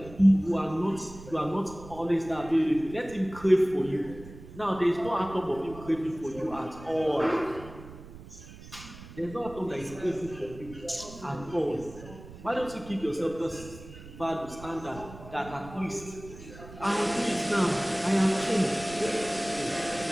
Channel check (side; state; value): right; noise; rumble, 16 dB below the sound